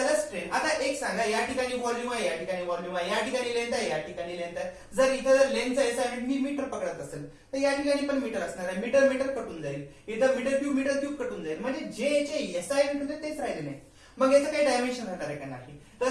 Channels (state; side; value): identical; both; correlation 1.00